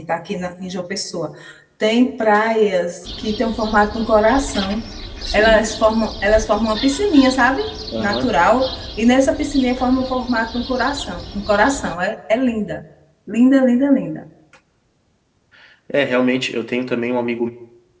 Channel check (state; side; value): identical; both; correlation 1.00